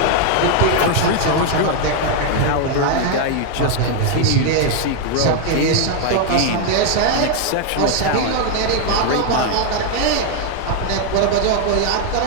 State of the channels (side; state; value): both; different; correlation 0.01